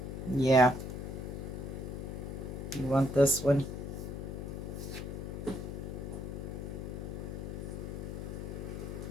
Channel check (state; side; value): noise; left; hum, 5 dB below the sound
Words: Yeah. You want this one?